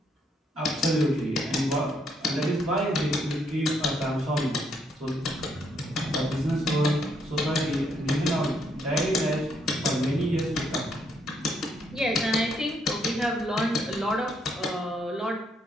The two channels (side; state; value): both; normal; correlation 0.73